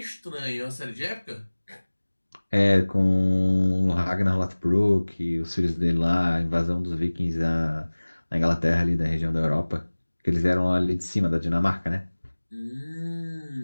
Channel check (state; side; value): inverted; both; correlation -1.00